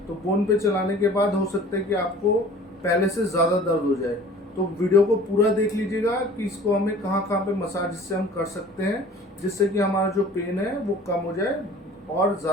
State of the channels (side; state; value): both; normal; correlation 0.47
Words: तो बोन पे चलाने के बाद हो सकता है कि आपको पहले से ज़्यादा दर्द हो जाए। तो वीडियो को पूरा देख लीजिएगा कि इसको हमें कहाँ कहाँ पे मसाज इससे हम कर सकते हैं, जिससे कि हमारा जो पेन है वो कम हो जाए और